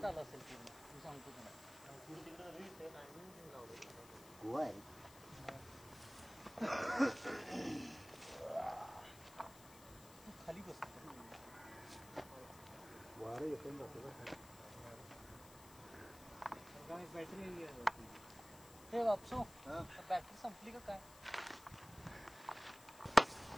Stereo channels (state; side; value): noise; left; hiss, 19 dB below the sound